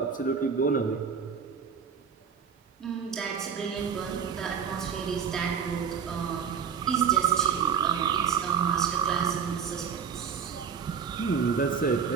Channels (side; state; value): left; quieter; 6.9 dB